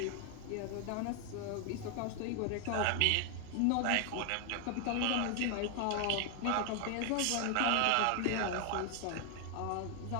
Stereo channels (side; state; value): both; different; correlation 0.00